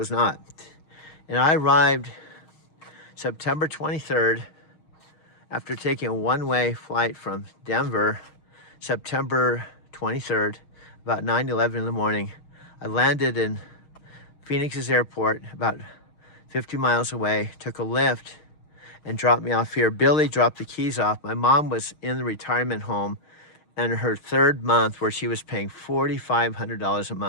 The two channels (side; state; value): right; late; 6.4 ms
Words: not. And I arrived September 23rd after taking a one-way flight from Denver, September 23rd, about 9:11 in the morning. I landed in Phoenix's airport, about 50 miles away, took a Lyft and dropped me off here. Billy dropped the keys off. My mom was in the retirement home and her third month, where she was paying $4,500 a